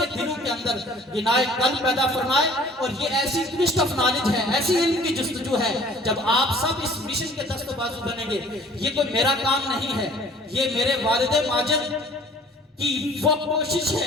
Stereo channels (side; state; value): both; normal; correlation 0.52